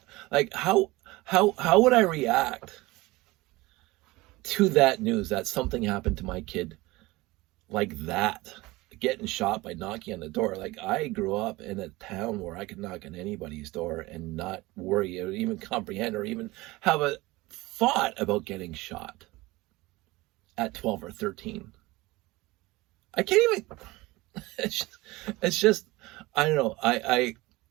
How would I react to that news that something happened to my kid like that? Getting shot by knocking on the door. Like, I grew up in a town where I could knock on anybody's door and not worry or even comprehend or even have a thought about getting shot at 12 or 13. I can't even, it's just, I don't know.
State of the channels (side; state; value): left; quieter; 20.8 dB